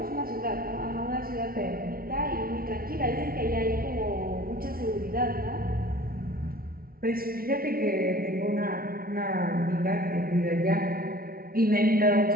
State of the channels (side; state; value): left; late; 0.43 ms